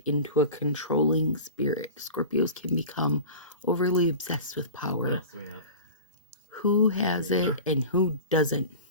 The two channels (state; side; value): inverted; both; correlation -0.36